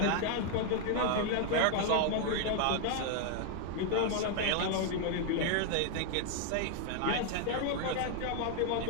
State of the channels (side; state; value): both; different; correlation 0.00